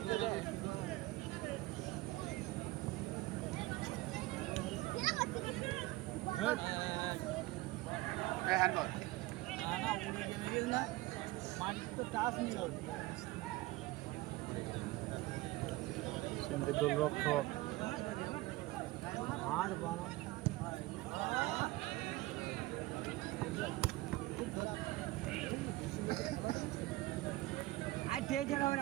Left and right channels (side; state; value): left; quieter; 19.4 dB